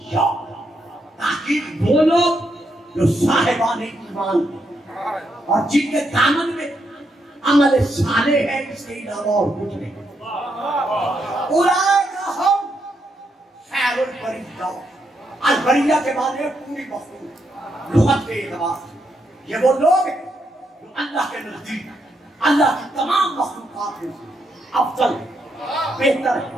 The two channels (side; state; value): both; normal; correlation 0.79